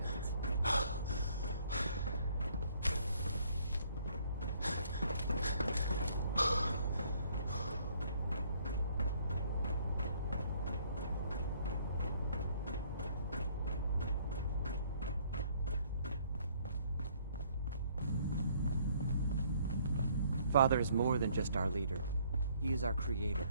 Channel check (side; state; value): both; inverted; correlation -0.63